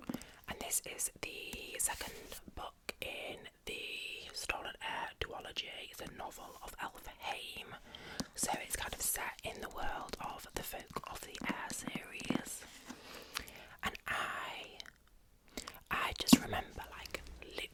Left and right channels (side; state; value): both; identical; correlation 1.00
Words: And this is the second book in the Stolen Heir duology. It's a novel of Elfhame, so it's kind of set in the world of the Folk of the Air series. And I just remember like